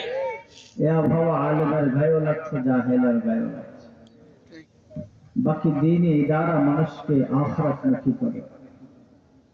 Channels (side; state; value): both; identical; correlation 1.00